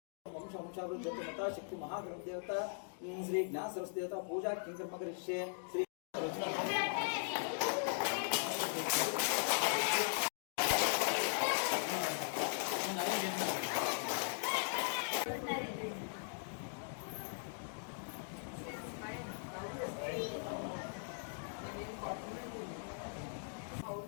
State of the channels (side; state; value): right; silent; digital silence